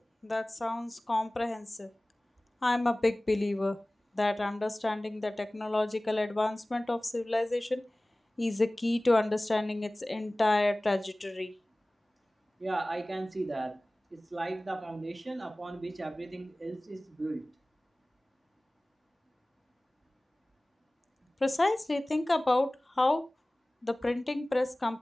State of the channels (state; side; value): normal; both; correlation 0.98